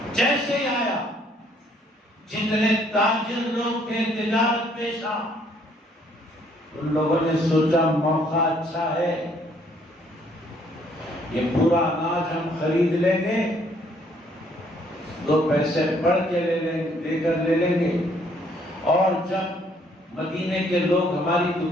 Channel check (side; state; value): both; normal; correlation 0.65